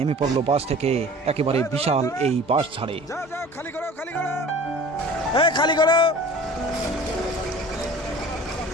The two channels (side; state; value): both; normal; correlation 0.43